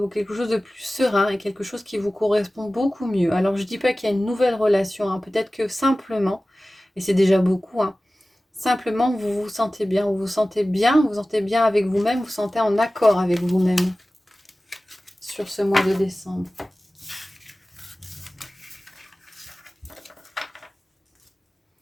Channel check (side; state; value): both; normal; correlation 0.97